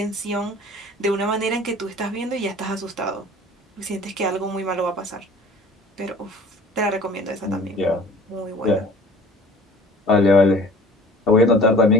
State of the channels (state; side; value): normal; both; correlation 0.47